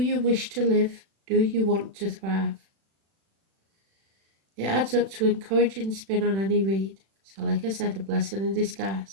wish to live? Do you want to thrive? It adds up to encouraging spin on any read. So like I said, a blessing in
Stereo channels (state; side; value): late; left; 36 ms